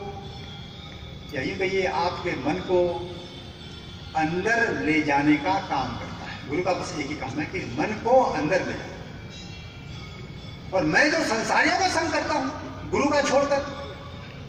यही कहिए आपके मन को अंदर ले जाने का काम करता है। गुरु का बस एक ही काम है कि मन को अंदर ले जाए। और मैं जो संसारियों का संग करता हूं गुरु का छोड़कर,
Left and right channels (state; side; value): identical; both; correlation 1.00